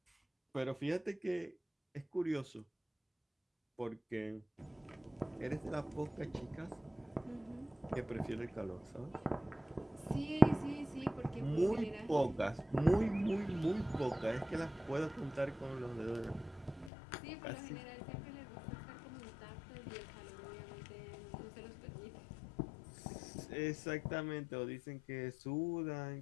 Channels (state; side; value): drops out; right; at 16.9 s